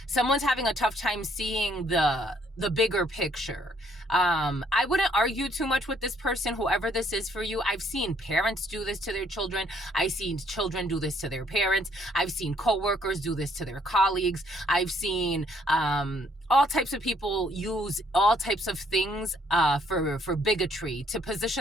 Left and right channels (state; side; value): normal; both; correlation 0.66